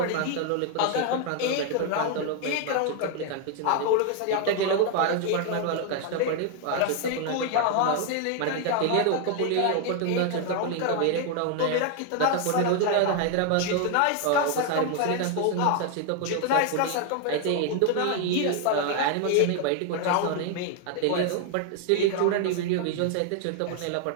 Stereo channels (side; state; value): both; different; correlation 0.00